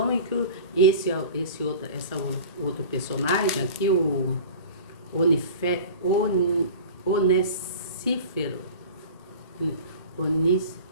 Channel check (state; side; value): inverted; both; correlation -0.39